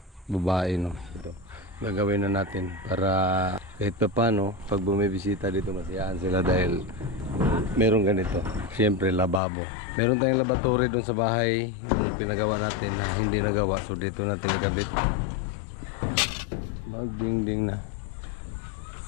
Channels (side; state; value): right; drops out; at 9.4 s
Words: babae, no? Ito gagawin na natin para kahit pa paano pag bumibisita dito masiyahan sila dahil meron ganito. Siyempre lababo, meron tayong laboratory doon sa bahay yung pinagawa natin na hindi nagawa, so dito natin nagabit. Magdingding na.